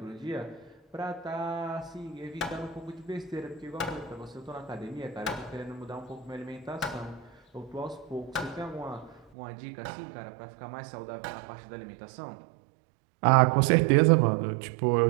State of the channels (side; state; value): left; drops out; at 9.2 s